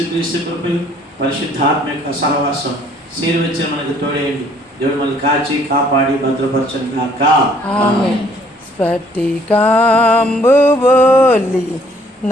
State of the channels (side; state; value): both; normal; correlation 0.61